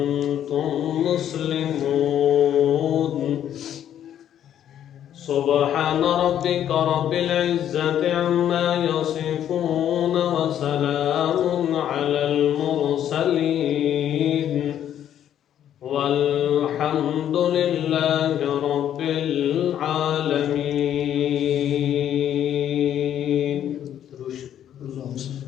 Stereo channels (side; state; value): right; quieter; 10.4 dB